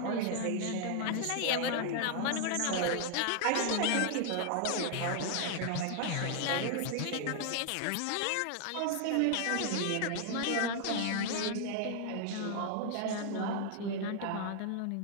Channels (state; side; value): different; both; correlation 0.00